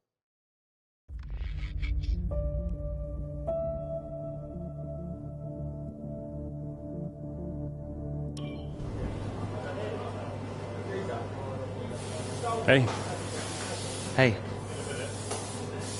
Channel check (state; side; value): identical; both; correlation 1.00